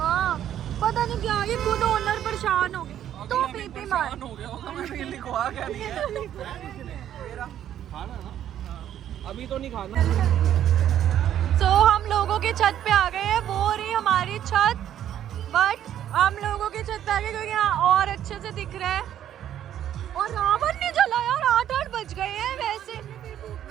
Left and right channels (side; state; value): left; quieter; 10.9 dB